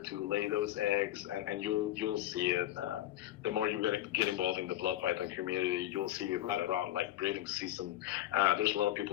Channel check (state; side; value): quieter; right; 13.8 dB